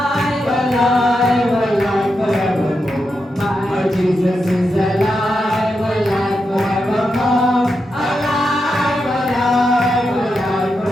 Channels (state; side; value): normal; both; correlation 0.86